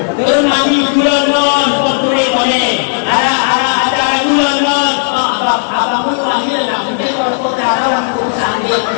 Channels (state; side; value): silent; right; digital silence